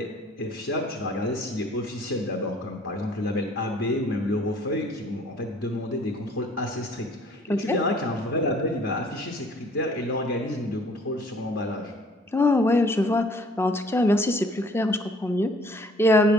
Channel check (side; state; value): both; normal; correlation 0.56